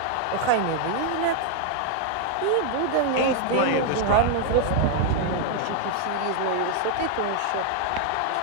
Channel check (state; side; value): different; both; correlation 0.00